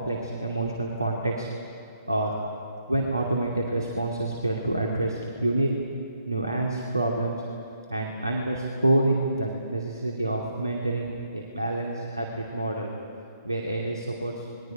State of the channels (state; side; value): inverted; both; correlation -0.74